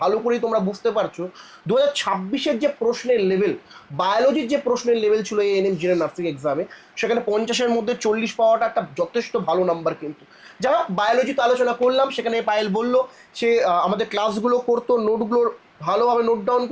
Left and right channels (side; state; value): both; identical; correlation 1.00